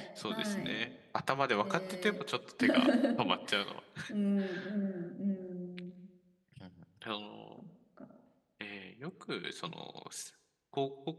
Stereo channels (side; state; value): both; identical; correlation 1.00